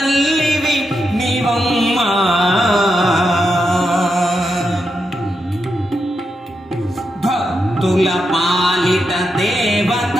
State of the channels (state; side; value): normal; both; correlation 0.85